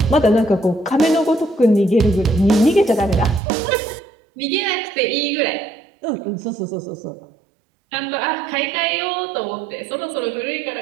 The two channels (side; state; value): left; drops out; at 3.4 s